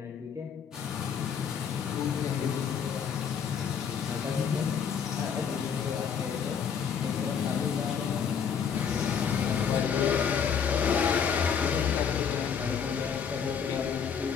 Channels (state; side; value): quieter; right; 7.2 dB